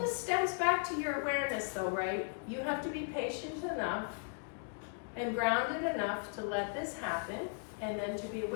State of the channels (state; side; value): silent; right; 53 dB below the other